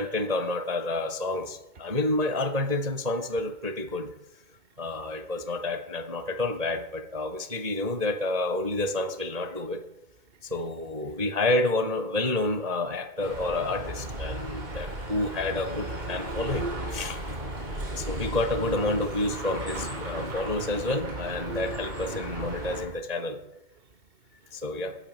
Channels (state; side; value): late; left; 2.2 ms